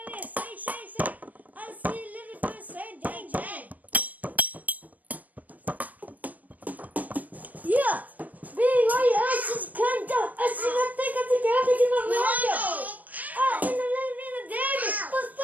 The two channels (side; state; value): left; late; 0.077 ms